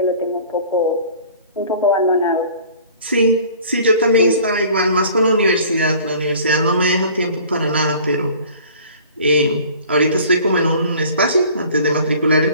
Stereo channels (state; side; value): inverted; both; correlation -0.48